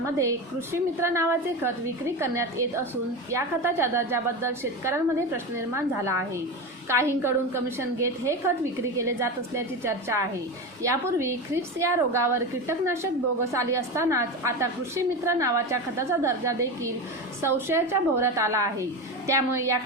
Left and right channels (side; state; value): both; normal; correlation 0.21